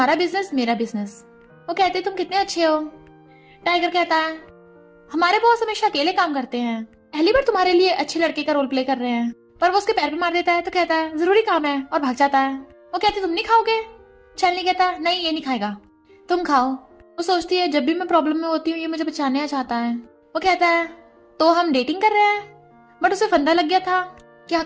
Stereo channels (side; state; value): both; identical; correlation 1.00